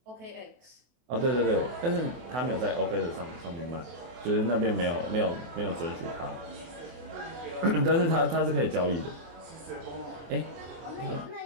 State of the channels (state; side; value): late; left; 24 ms